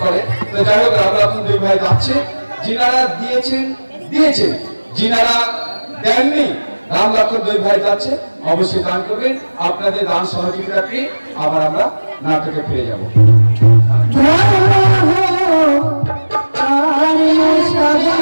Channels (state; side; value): inverted; both; correlation -1.00